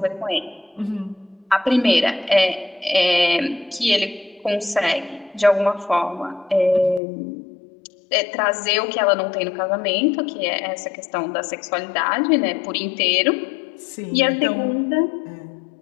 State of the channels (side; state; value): right; drops out; at 7.0 s